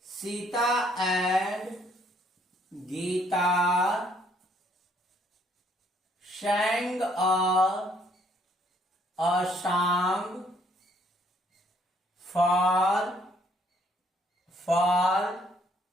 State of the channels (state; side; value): normal; both; correlation 0.66